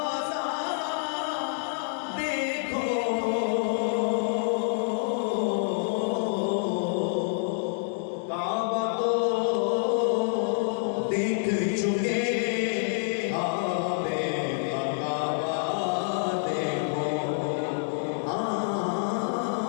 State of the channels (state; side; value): silent; right; digital silence